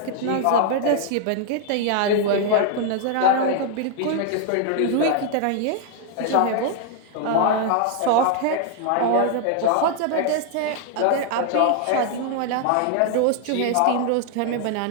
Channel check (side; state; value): both; different; correlation 0.00